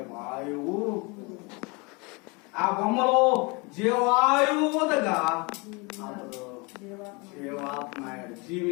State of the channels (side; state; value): right; quieter; 28.7 dB